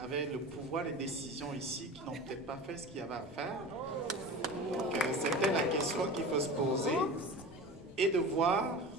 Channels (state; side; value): normal; both; correlation 0.33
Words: avaient le pouvoir de décision ici qui n'ont peut-être pas fait ce qu'il y avait à faire? Donc, c'était la question qu'il faut se poser et de voir,